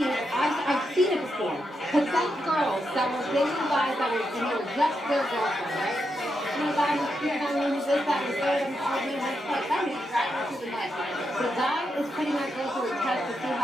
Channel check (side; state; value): both; normal; correlation 0.84